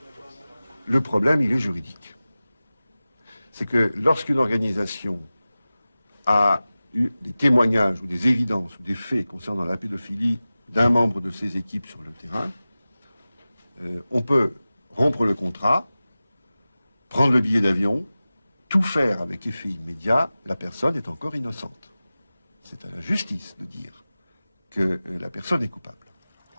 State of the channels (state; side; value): inverted; both; correlation -0.97